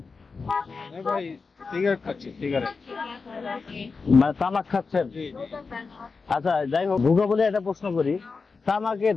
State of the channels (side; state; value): right; quieter; 4.6 dB